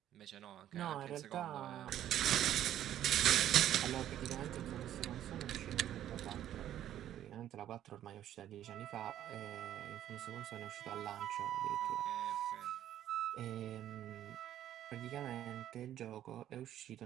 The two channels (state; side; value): quieter; left; 11.6 dB